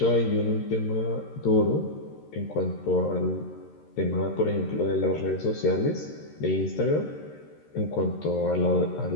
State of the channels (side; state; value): right; late; 13 ms